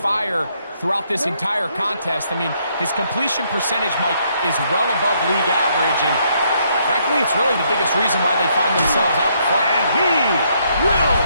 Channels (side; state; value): both; inverted; correlation -0.72